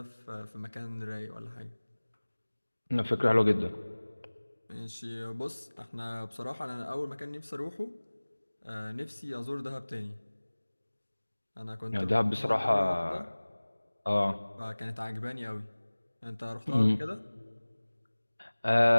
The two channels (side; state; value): both; inverted; correlation -1.00